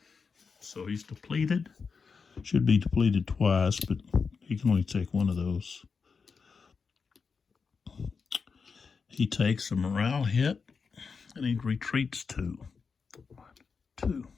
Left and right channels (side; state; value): right; quieter; 5.3 dB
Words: So he's depleted. Should be depleted twice, but he can only take one of those. He takes a morale hit, and he retreats 2. 1, 2,